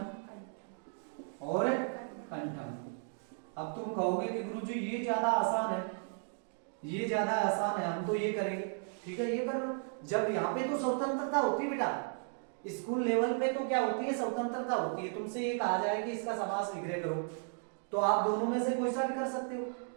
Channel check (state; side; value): silent; left; 55 dB below the other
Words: और कंठम। अब तुम कहोगे कि गुरुजी ये ज्यादा आसान है, ये ज्यादा आसान है, हम तो ये करेंगे। ठीक है, ये कर लो। जब यहाँ पे तो स्वतंत्रता होती है बेटा, स्कूल लेवल पे तो क्या होती है? स्वतंत्रता होती है। तुमसे ये कहा जाए कि इसका समास विग्रह करो तो आप दोनों में से कोई सा भी कर सकते हो।